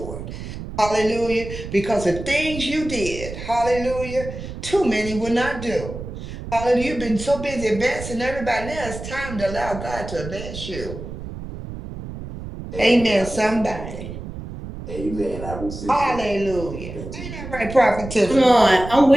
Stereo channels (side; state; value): right; noise; rumble, 10 dB below the sound